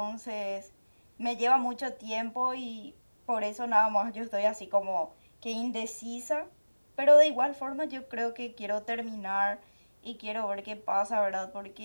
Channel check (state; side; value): inverted; both; correlation -1.00